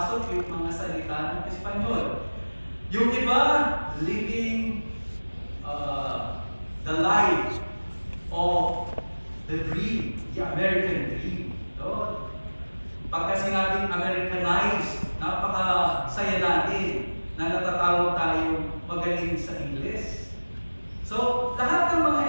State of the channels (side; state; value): both; inverted; correlation -1.00